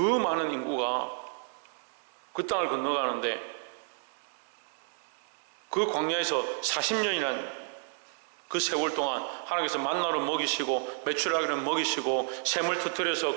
인구가 그 땅을 건너가는데, 그 광야에서 40년이란 그 세월 동안 하나님께서 만나로 먹이시고 메추라기를 먹이시고 샘을 터뜨려서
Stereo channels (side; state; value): left; silent; 57 dB below the other